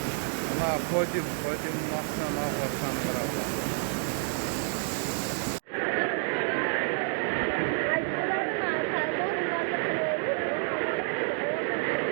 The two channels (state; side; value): silent; left; 57 dB below the other